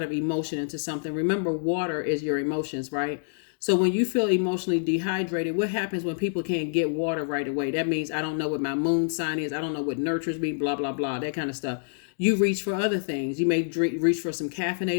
of emotion into something. Remember, water is your emotions, right? So when you feel emotionally dehydrated, what happens when people can't get water right away? That means I don't know what my moon sign is. I don't know what nurtures me, blah, blah, blah, that kind of stuff. You reach for other things. You may reach for some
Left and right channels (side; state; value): right; silent; digital silence